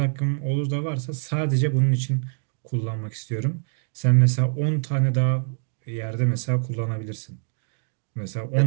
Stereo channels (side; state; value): left; silent; 62 dB below the other